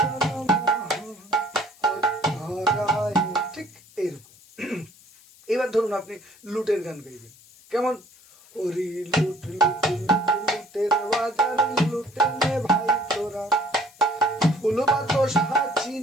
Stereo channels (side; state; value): left; noise; hiss, 26 dB below the sound